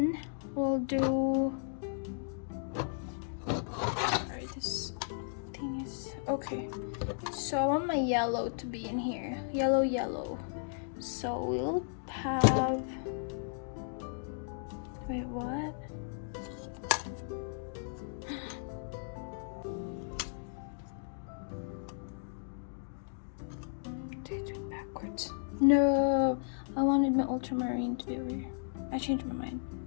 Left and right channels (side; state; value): right; silent; digital silence